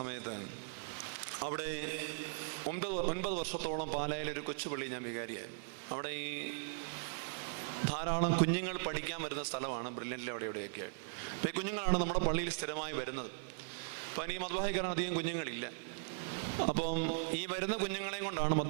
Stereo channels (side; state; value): left; silent; 52 dB below the other